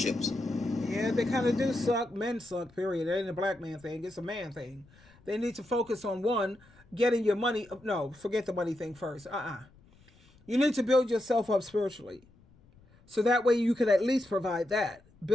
Yeah, they kind of do suck. Men suck, period. It ain't a black man thing. It's a man thing. They need to focus on one, getting your money. No, forget the money thing first. You need to build yourself up spiritually. So that way you can at least provide that.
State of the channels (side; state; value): left; noise; rumble, 28 dB below the sound